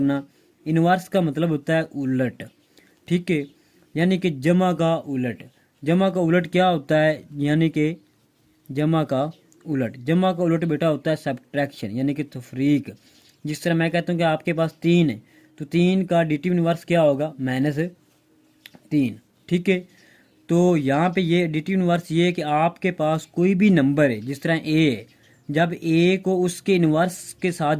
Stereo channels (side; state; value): both; identical; correlation 1.00